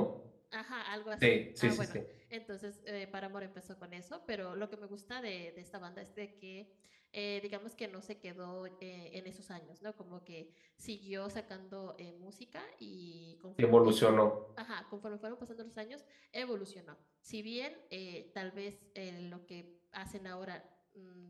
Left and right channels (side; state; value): both; identical; correlation 1.00